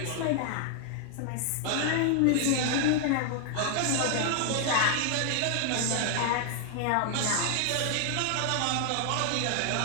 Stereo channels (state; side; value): different; both; correlation 0.00